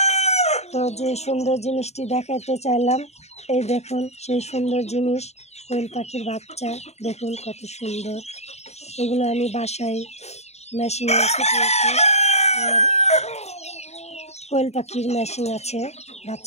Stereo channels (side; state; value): right; late; 0.32 ms